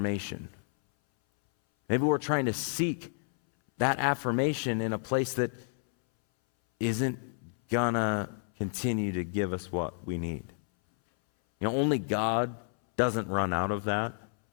Maybe we're trying to seek that affirmation in a place that isn't gonna continue to give us what we need. Only God doesn't run out of that.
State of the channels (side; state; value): right; silent; 58 dB below the other